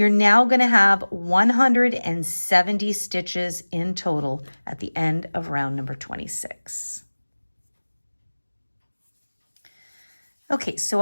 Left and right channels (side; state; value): both; inverted; correlation -1.00